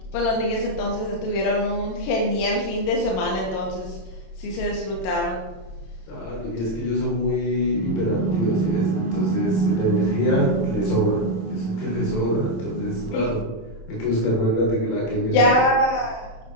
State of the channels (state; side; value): late; right; 27 ms